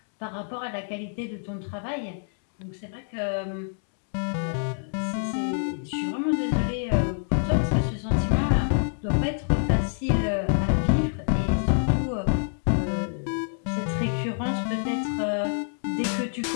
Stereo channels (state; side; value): silent; right; digital silence